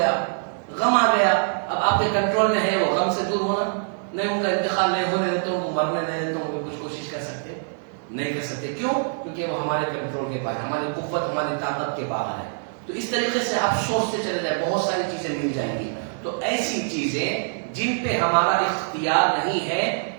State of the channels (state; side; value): silent; left; digital silence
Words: غم آ گیا، اب آپ کے کنٹرول میں ہے وہ غم سے دور ہونا، نہیں ان کا انتقال نہیں ہونے دیتے ہوں، مرنے نہیں دیتے ہوں، کچھ کوشش کر سکتے نہیں کر سکتے، کیوں؟ کیونکہ وہ ہمارے کنٹرول کے باہر، ہماری قوت، ہماری طاقت کے باہر ہے۔ تو اس طریقے سے آپ سوچتے چلے جائیں، بہت ساری چیزیں مل جائیں گی۔ تو ایسی چیزیں جن پہ ہمارا اختیار نہیں ہے،